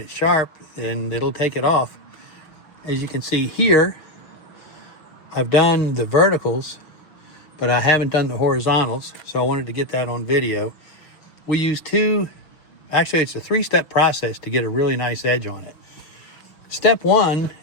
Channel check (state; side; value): late; right; 6.3 ms